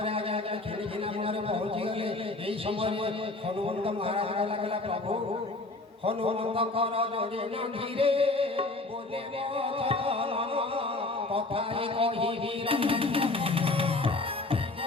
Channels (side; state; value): right; quieter; 3.1 dB